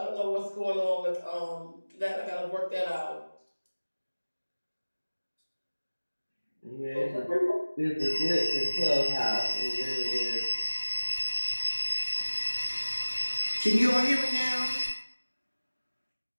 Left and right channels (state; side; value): inverted; both; correlation -1.00